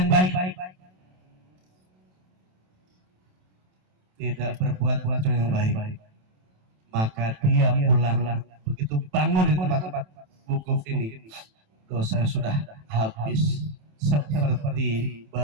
baik, tidak berbuat kata yang baik. Maka dia pulang, begitu bangun di tempat-tempat wukuf ini, dosa sudah habis seperti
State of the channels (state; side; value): late; left; 27 ms